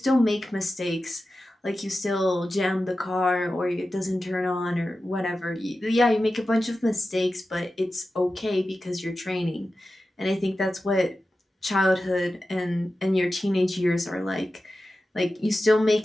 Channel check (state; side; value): normal; both; correlation 0.93